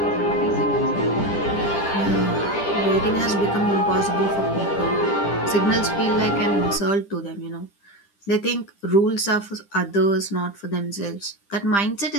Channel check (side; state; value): right; late; 10 ms